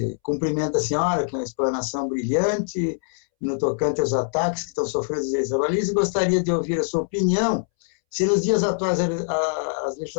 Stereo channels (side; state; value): right; silent; 63 dB below the other